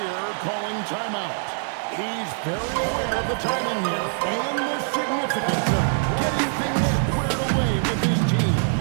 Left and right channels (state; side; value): silent; left; digital silence